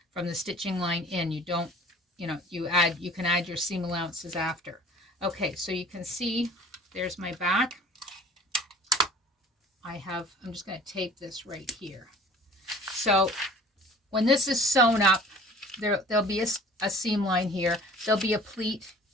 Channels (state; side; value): normal; both; correlation 0.47